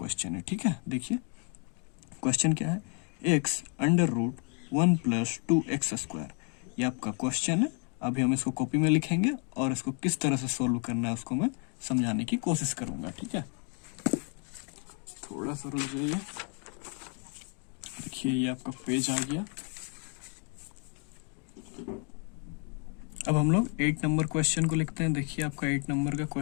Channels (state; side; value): quieter; right; 39.2 dB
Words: है, ठीक है। देखिए क्वेश्चन क्या है, x √1 + 2x²। ये आपका क्वेश्चन है। अभी हम इसको कॉपी में लिखेंगे और इसको किस तरह से सोल्व करना है उसको मैं समझाने की कोशिश करूंगा, ठीक है। थोड़ा सा रुक जाइए। देखिए ये आपका पेज आ गया। अब हम लोग 8 नंबर क्वेश्चन को लिखते हैं। देखिए आपका 8 नंबर का